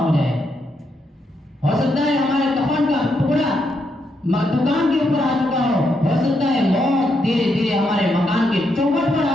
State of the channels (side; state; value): both; normal; correlation 0.80